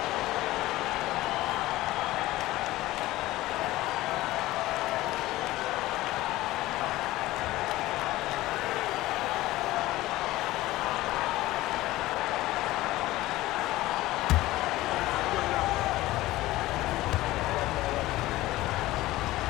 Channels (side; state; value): right; quieter; 17.3 dB